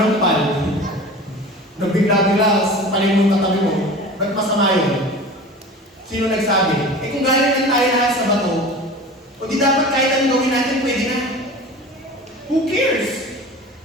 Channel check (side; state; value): both; normal; correlation 0.37